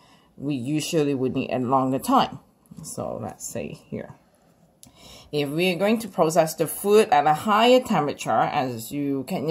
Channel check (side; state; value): both; identical; correlation 1.00